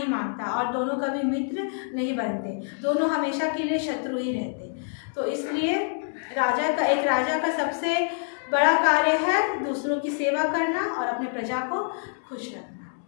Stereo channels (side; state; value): right; silent; digital silence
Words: मांगता और दोनों कभी मित्र नहीं बनते, दोनों हमेशा के लिए शत्रु ही रहते। तो इसलिए एक राजा का सबसे बड़ा कार्य है दूसरों की सेवा करना और अपने प्रजा को खुश रखना।